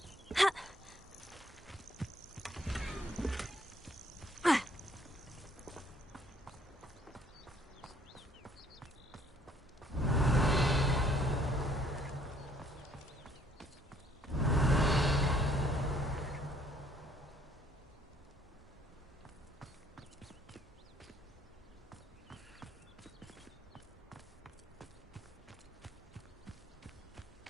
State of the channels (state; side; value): normal; both; correlation 0.63